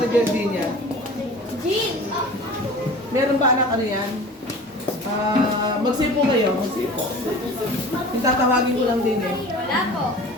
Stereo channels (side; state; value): both; normal; correlation 0.40